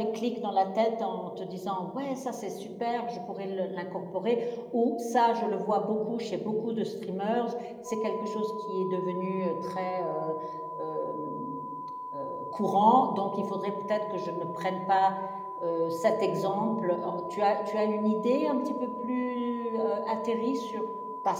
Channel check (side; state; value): both; identical; correlation 1.00